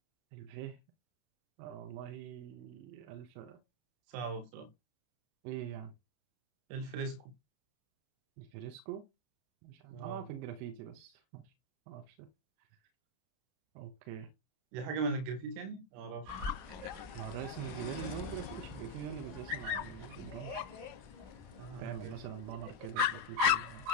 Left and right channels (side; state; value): left; late; 32 ms